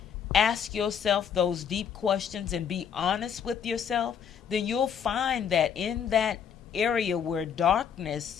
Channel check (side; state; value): right; quieter; 7.8 dB